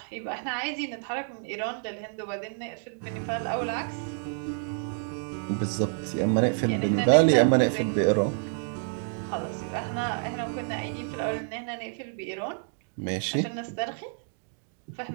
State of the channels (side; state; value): left; silent; digital silence